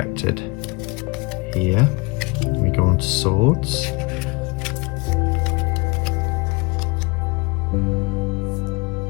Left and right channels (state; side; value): quieter; right; 26.7 dB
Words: here. We go on to swords.